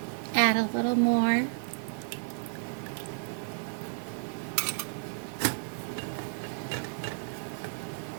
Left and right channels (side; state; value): left; silent; 56 dB below the other